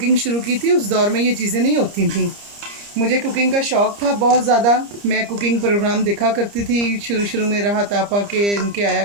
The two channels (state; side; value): late; left; 30 ms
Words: शुरू की थी उस दौर में ये चीज़ें नहीं होती थी। मुझे कुकिंग का शौक़ था बहुत ज़्यादा। मैं कुकिंग प्रोग्राम देखा करती थी शुरू में। राहत आपा के इनके आया